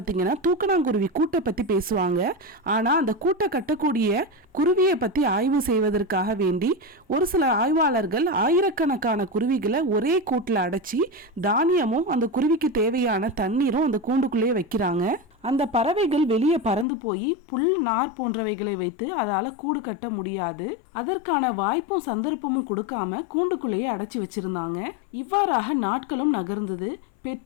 தூக்கணாங்குருவி கூட்டை பற்றி பேசுவாங்க. ஆனால் அந்த கூட்டை கட்டக்கூடிய குருவியை பற்றி ஆய்வு செய்வதற்காக வேண்டி ஒரு சில ஆய்வாளர்கள் ஆயிரக்கணக்கான குருவிகளை ஒரே கூட்டில் அடைச்சி தானியமும் அந்த குருவிக்கு தேவையான தண்ணீரும் அந்த கூண்டுக்குள்ளேயே வைக்கிறாங்க. அந்த பறவைகள் வெளியே பறந்து போய் புல் நார் போன்றவைகளை வைத்து அதால கூடு கட்ட முடியாது. அதற்கான வாய்ப்பும் சந்தர்ப்பமும் கொடுக்காம கூண்டுக்குள்ளேயே அடைச்சி வச்சிருந்தாங்க. இவ்வாறாக நாட்களும் நகர்ந்தது.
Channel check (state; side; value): drops out; right; at 16.9 s